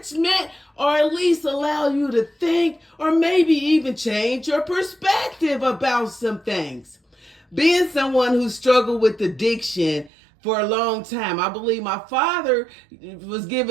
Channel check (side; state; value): left; drops out; at 10.1 s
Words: or at least allow you to think or maybe even change your perspective about some things. Being someone who struggled with addiction for a long time, I believe my father was